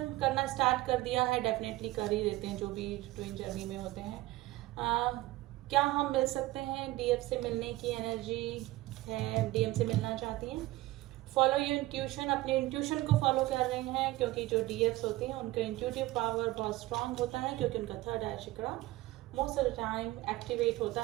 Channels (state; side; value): quieter; left; 18.3 dB